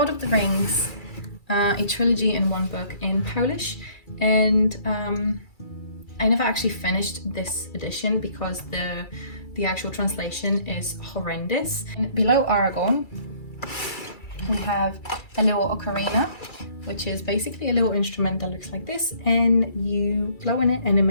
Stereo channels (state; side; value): late; right; 2.3 ms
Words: of the Rings, a trilogy in one book in Polish, and I never actually finished this edition because the actual translation is horrendous. And below Aragorn, we have a little ocarina, which is basically a little instrument that looks like this, and you blow in it and it